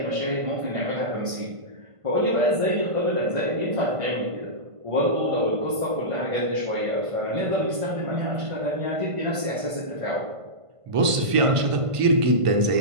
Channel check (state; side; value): late; left; 1.5 ms